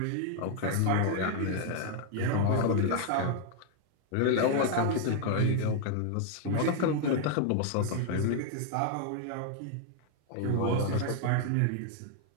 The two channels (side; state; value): both; different; correlation 0.00